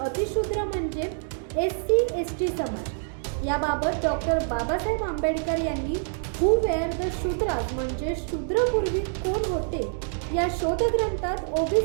म्हणजे एससी एसटी समाज. याबाबत डॉक्टर बाबासाहेब आंबेडकर यांनी हू वेअर द शूद्रास म्हणजे शूद्रपूर्वी कोण होते या शोधग्रंथात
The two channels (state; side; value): silent; left; digital silence